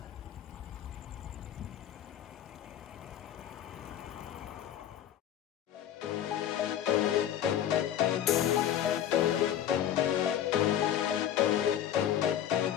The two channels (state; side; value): quieter; right; 10.6 dB